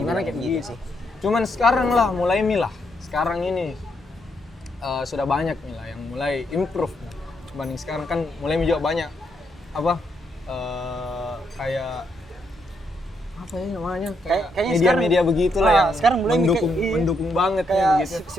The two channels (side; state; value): both; normal; correlation 0.77